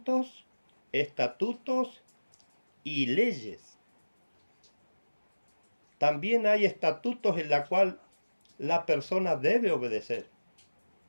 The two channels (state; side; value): inverted; both; correlation -1.00